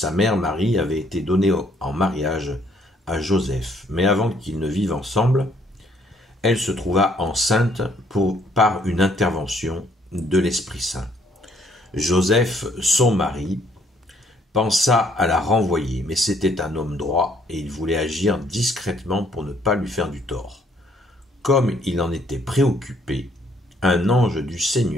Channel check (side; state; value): both; normal; correlation 0.65